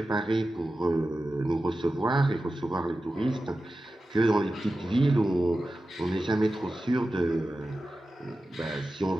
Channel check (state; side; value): normal; both; correlation 0.93